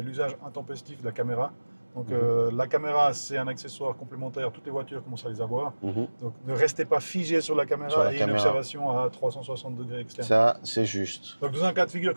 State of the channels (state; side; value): inverted; both; correlation -1.00